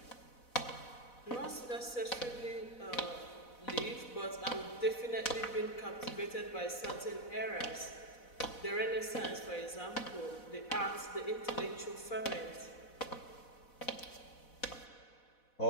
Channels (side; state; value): right; late; 4.1 ms